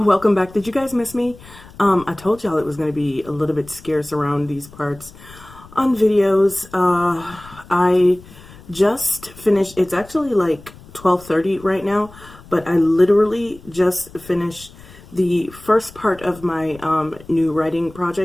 back. Did you guys miss me? I told y'all it was going to be a little bit scarce around these parts on videos. I just finished, it's actually like 12:30 right now, but I literally just finished the first part of my new writing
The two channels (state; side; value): noise; left; rumble, 21 dB below the sound